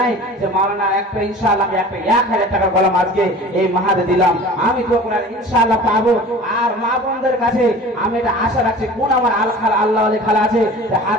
যে মাওলানা একটা ইনশাআল্লাহ আমি একটা 1000 টাকার কলম আজকে এই মাহাদে দিলাম, আমি দোয়া করে ইনশাআল্লাহ পাবো। আর মা বোনদের কাছে আমি এটা আশা রাখছি, কোন আমার আল্লাহ আলী খালা আছে যে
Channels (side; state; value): both; normal; correlation 0.41